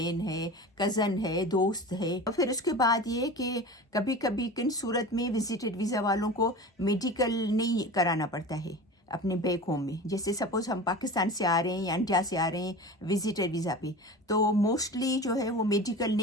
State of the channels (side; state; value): both; normal; correlation 0.33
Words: ہے، کزن ہے، دوست ہے۔ اور پھر اس کے بعد یہ کہ کبھی کبھی کن صورت میں وزٹڈ ویزا والوں کو میڈیکل نہیں کرانا پڑتا ہے اپنے بیک ہوم میں، جیسے سپوز ہم پاکستان سے آ رہے ہیں یا انڈیا سے آ رہے ہیں وزٹر ویزا پہ، تو موسٹلی جو ہے وہ میڈیکل